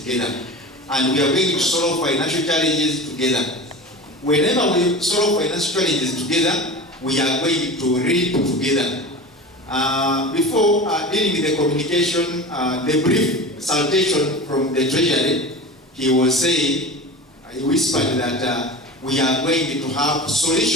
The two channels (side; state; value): both; normal; correlation 0.32